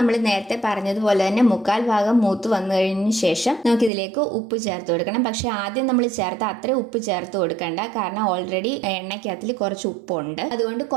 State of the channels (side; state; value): left; drops out; at 3.9 s